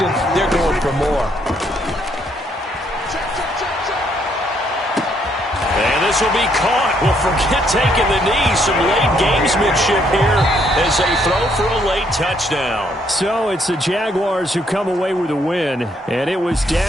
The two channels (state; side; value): normal; both; correlation 0.71